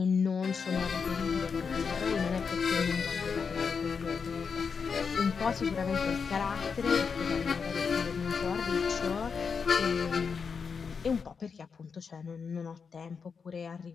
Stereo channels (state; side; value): quieter; right; 5.8 dB